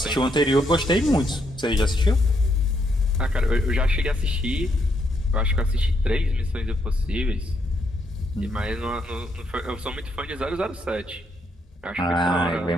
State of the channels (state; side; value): normal; both; correlation 0.76